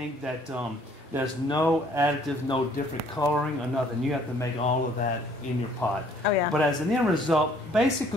that there's no additive, no different coloring or nothing. You have to make all of that in your pot. Oh yeah. But as an end result,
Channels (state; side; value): normal; both; correlation 0.60